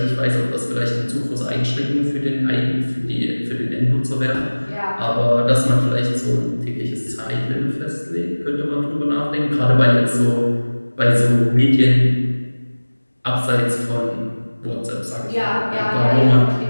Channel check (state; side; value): inverted; both; correlation -1.00